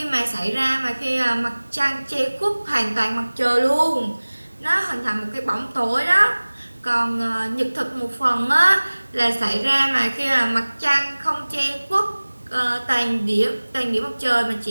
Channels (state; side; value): inverted; both; correlation -1.00